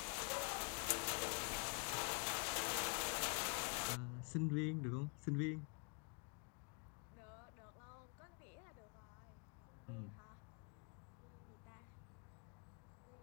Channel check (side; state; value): right; quieter; 38.6 dB